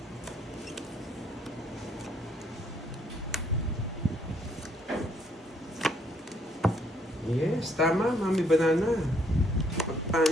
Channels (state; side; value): normal; both; correlation 0.69